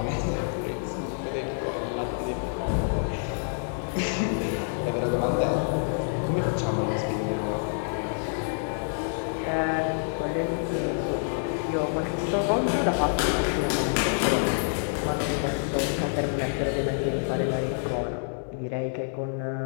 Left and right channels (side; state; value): right; silent; 60 dB below the other